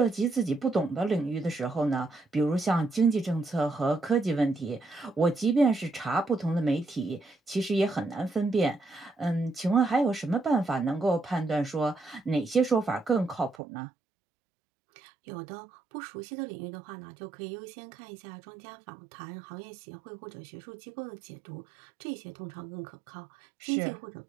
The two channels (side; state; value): left; drops out; at 13.6 s